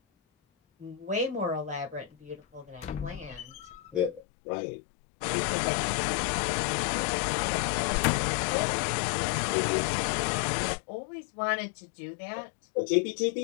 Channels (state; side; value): drops out; right; at 4.2 s